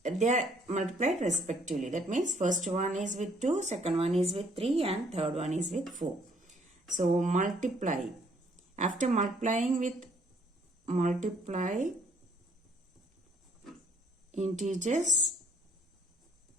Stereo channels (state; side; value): normal; both; correlation 0.65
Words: they are multiplied respectively. That means first one is with 2, second one is with 3 and third one is with 4. So multiply. After multiplying with multiply integers